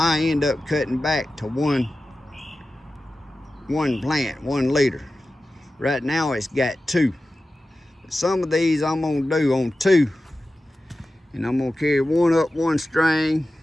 end up cutting back to one plant, 1 liter. Right now it's got 2. But some of these I'm gonna do on 2, and I'm gonna carry one up one string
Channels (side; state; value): both; normal; correlation 0.94